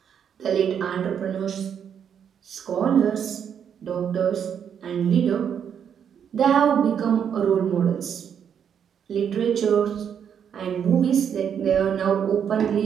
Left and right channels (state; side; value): quieter; left; 8.1 dB